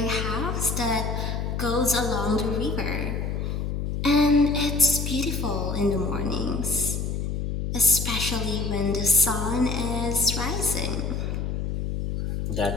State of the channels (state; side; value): noise; left; hum, 2 dB below the sound